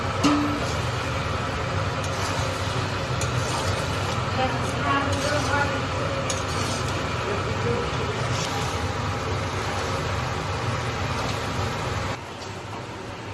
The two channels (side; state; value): both; identical; correlation 1.00